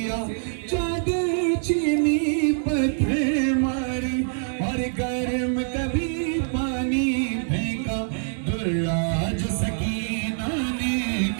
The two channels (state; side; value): silent; left; 62 dB below the other